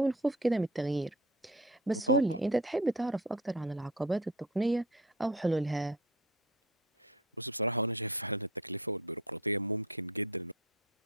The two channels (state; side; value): normal; both; correlation 0.37